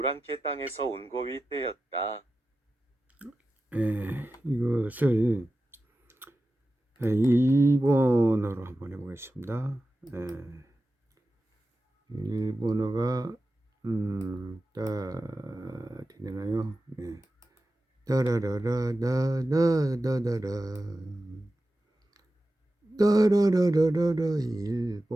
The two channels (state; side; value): normal; both; correlation 0.93